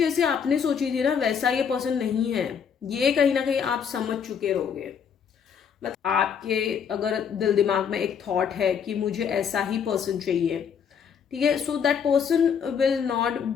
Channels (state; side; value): quieter; right; 7.2 dB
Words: आपने सोची थी ना वैसा ये पर्सन नहीं है, ये कहीं ना कहीं आप समझ चुके रहोगे। मतलब आपके अगर दिल दिमाग में एक थॉट है कि मुझे ऐसा ही पर्सन चाहिए, ठीक है, so that person will not